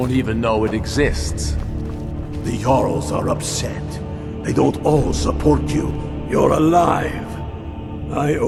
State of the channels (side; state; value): both; identical; correlation 1.00